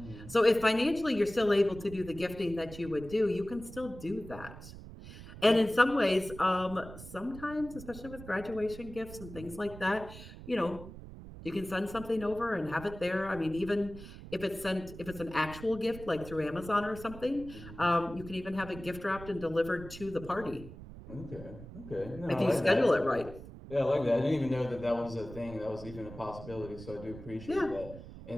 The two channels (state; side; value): noise; right; rumble, 14 dB below the sound